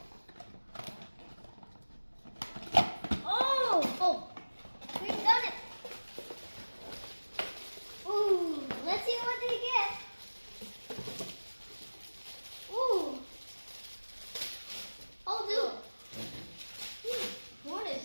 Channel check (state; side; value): inverted; both; correlation -1.00